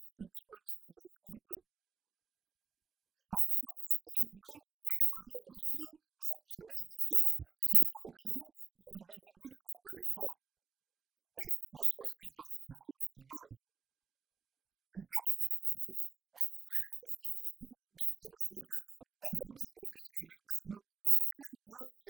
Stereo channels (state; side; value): quieter; left; 5.7 dB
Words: kitoko tala melanga te. La justice aujourd'hui ça se négocie entre père et fils, ça se négocie entre individus na ba téléphone. Et bon biso bato kozala bato to kobenga. Et bon ba oyo baza ba fela oyo bazali ba kokanga bango bazo botola bango ba mapangu sans même qu'il y ait une